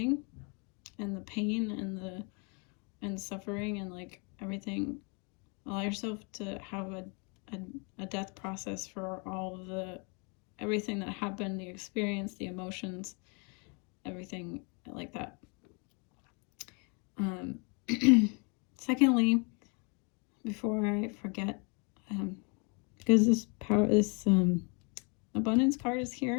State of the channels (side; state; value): right; quieter; 34.3 dB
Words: and the pain and the suffering and like everything. Allow yourself to have a death process for all of everything that happened, the experience, the emotions, everything like that. Secondly, before I forget, because this abundance card is